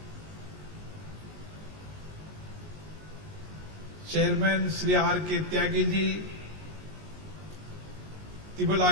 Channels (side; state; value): left; late; 19 ms